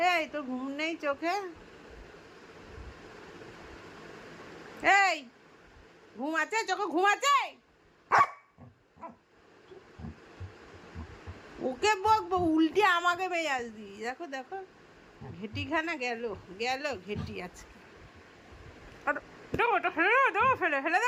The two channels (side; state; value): both; identical; correlation 1.00